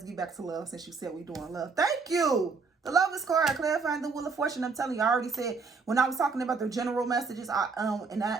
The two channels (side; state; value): left; quieter; 4.6 dB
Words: get back to love since you said we're doing love. Thank you. The Lovers card, clarifying the Wheel of Fortune. I'm telling you, I already said when I was talking about the general messages, and